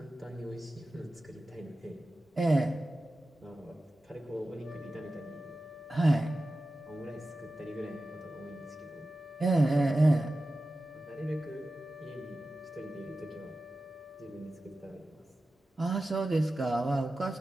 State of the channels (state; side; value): normal; both; correlation 0.94